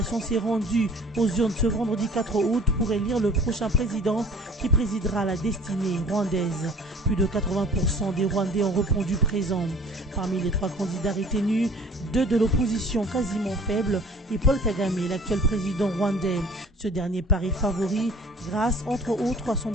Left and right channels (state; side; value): normal; both; correlation 0.49